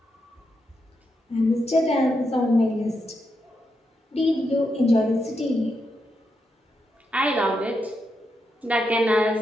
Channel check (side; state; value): both; normal; correlation 0.83